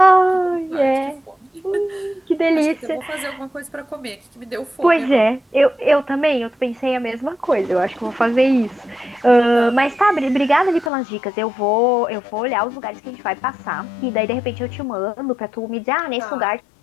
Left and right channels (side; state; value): right; drops out; at 10.9 s